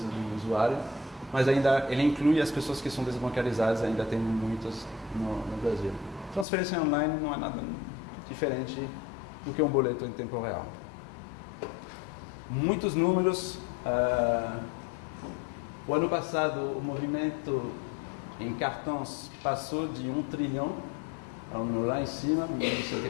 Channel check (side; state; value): right; drops out; at 6.5 s